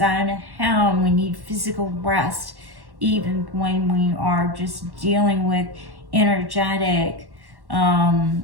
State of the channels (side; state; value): left; late; 1.1 ms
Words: and we need physical rest even when we are just dealing with energetic,